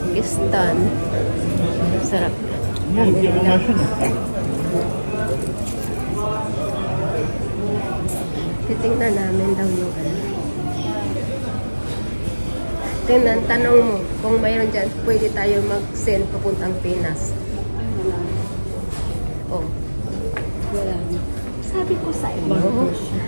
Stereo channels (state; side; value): inverted; both; correlation -1.00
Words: Sarap. Titingnan namin daw yung ano. Tingnan, tanong mo kung mayroon dyan, pwede tayo mag-send papuntang Pinas. Oh. Wala. Sabi ko sa iyo,